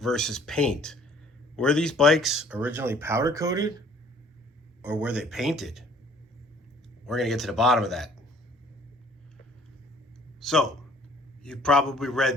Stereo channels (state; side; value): normal; both; correlation 0.56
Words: paint. Were these bikes originally powder coated or were they painted? We're going to get to the bottom of that. So, you've probably read